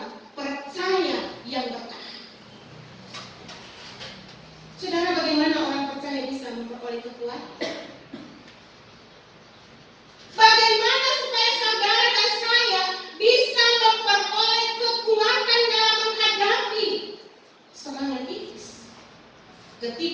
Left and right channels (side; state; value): both; identical; correlation 1.00